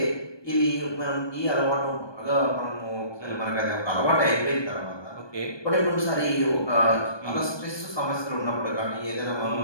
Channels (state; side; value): late; right; 1.2 ms